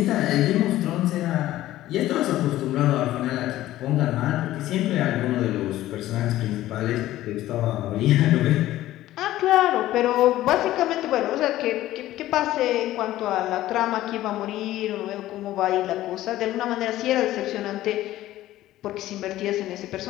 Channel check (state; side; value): quieter; right; 14.8 dB